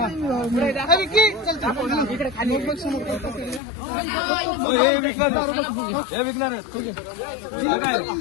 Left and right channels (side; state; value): right; drops out; at 3.6 s